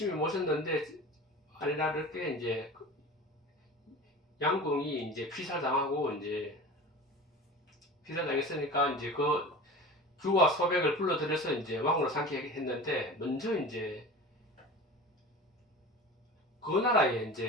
모셨는데, 아니라를 이제 양궁이 이제 피살당하고 이제 기사당했으니까 이제 그 규와 소백을 불러들여서 이제 왕으로 삼게 했는데, 먼저 이제 그 나라에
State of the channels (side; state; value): both; normal; correlation 0.35